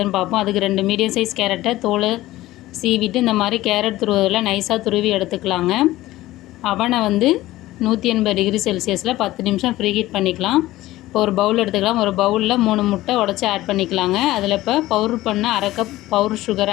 பார்ப்போம். அதுக்கு 2 மீடியம் சைஸ் கேரட்டை தோலை சீவிட்டு இந்த மாதிரி கேரட் துருவதில் நைஸாக துருவி எடுத்துக்கலாங்க. அவனை 180 டிகிரி செல்சியஸில் 10 நிமிஷம் ஃப்ரீ ஹீட் பண்ணிக்கலாம். இப்போ ஒரு பவுல் எடுத்துக்கலாம். ஒரு பவுலில் 3 முட்டை உடச்சி ஆட் பண்ணிக்கலாங்க. அதில் இப்போ பவுடர் பண்ண அரை கப் பவுடர்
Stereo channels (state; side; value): quieter; right; 16.7 dB